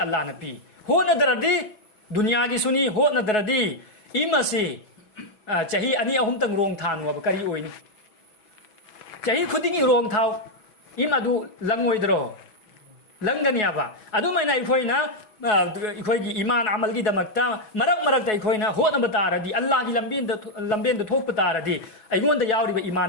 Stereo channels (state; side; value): late; right; 6.1 ms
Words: अल्लाह न पी होनदरदी दुनिया की सुनी होनदरदी इमसे चाही अनि अहुम तंग रोंग थानु अब करी ओइनी चाही खुदिगी रोंग थाव इम अदु लंगोइद्रो लंगनियाबा अदुमाइना इखोइना इखोइगी ईमान अमल की दमकता मरक मरकता इखोइना होनब तारदी अल्लाह की लंबेन थोप तारदी अइगोंद यावरिबा